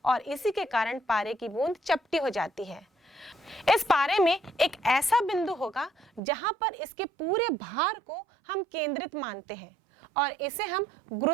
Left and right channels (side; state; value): left; drops out; at 6.2 s